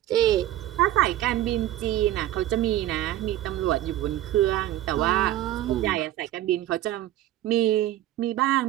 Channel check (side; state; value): left; quieter; 14.0 dB